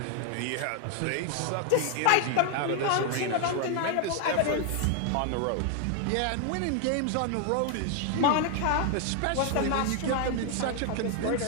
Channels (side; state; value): both; different; correlation 0.00